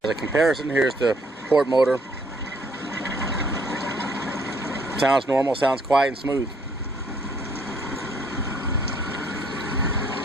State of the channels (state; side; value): normal; both; correlation 0.65